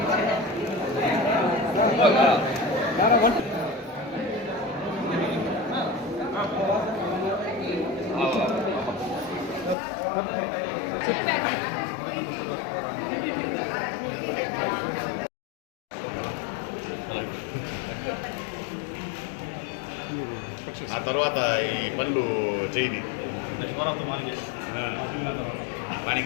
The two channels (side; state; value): right; drops out; at 9.8 s